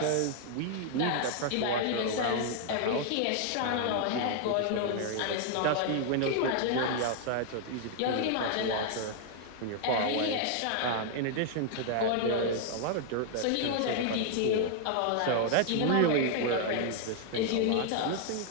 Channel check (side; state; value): both; different; correlation 0.00